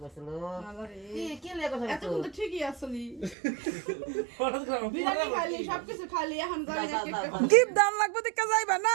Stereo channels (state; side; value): drops out; left; at 3.4 s